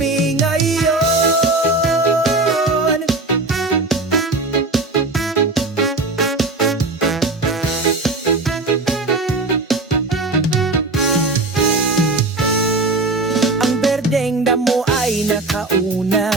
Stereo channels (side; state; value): left; quieter; 3.2 dB